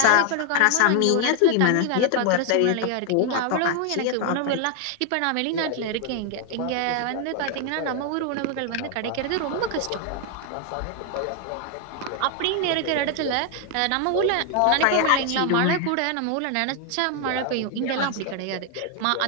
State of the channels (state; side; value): different; both; correlation 0.00